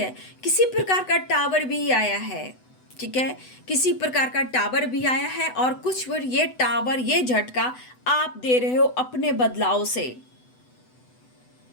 किसी प्रकार का टावर भी आया है, ठीक है, किसी प्रकार का टावर भी आया है, और कुछ बार ये टावर, ये झटका आप दे रहे हो अपने बदलाव से।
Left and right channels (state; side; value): late; right; 8.0 ms